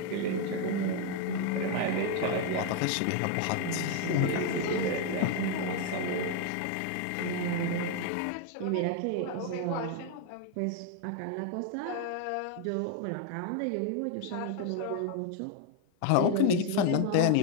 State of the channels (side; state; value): both; different; correlation 0.01